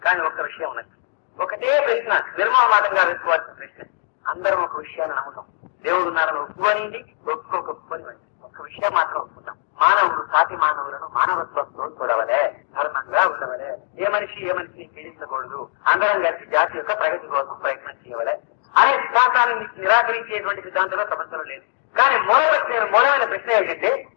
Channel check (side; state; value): right; silent; digital silence